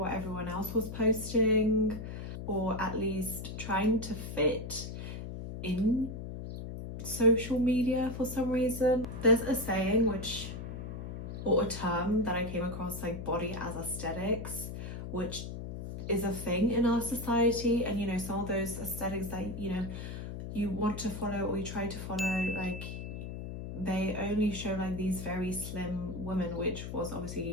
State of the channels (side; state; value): left; noise; hum, 7 dB below the sound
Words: everyone else was posting, or at least trying to fit in social media for some reason. There's a saying or a term that I came across, like body as aesthetics, which is a thing in our society. And you know, some of those aesthetics that, you know, you want to follow or you try to follow, like, they only show like these very slim women, which was